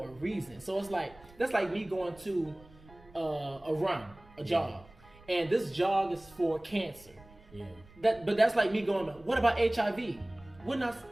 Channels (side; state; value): right; noise; rumble, 24 dB below the sound